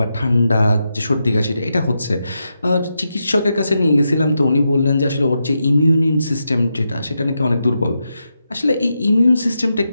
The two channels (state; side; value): inverted; both; correlation -0.86